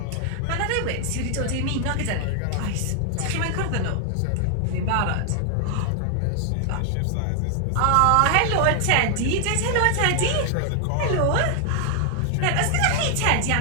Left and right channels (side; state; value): both; different; correlation 0.00